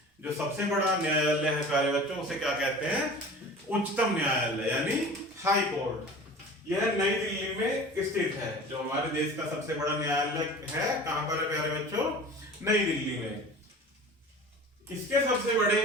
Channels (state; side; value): normal; both; correlation 0.39